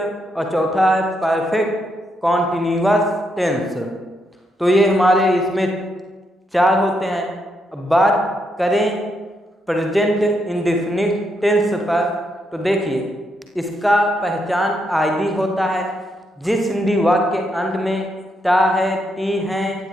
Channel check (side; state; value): both; normal; correlation 0.79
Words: और चौथा है परफेक्ट कॉन्टिन्यूअस टेंस। तो ये हमारे इसमें 4 होते हैं। अब बात करें प्रेजेंट इंडेफिनिट टेंस पर, तो देखिए इसका पहचान आदि होता है। जिस हिंदी वाक्य के अंत में टा है, टी है,